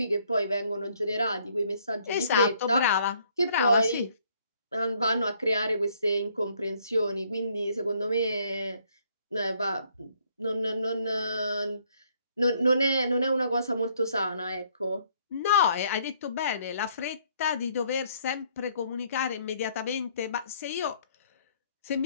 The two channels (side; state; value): both; inverted; correlation -0.66